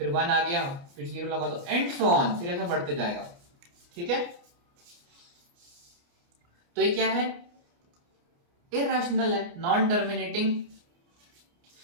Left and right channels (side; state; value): left; late; 29 ms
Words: 1 आ गया, फिर 0 लगा दो, एंड सो ऑन, फिर ऐसा बढ़ते जाएगा। ठीक है, तो ये क्या है, इरैशनल है, नॉन टर्मिनेटिंग,